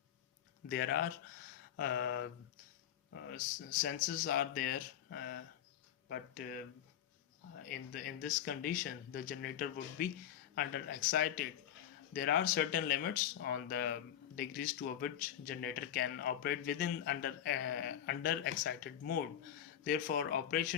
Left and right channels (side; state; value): right; quieter; 10.4 dB